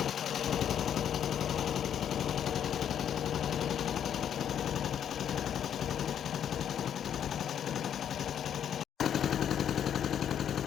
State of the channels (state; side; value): quieter; right; 9.2 dB